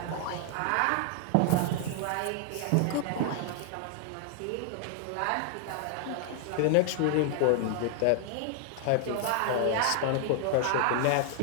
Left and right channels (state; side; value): different; both; correlation 0.00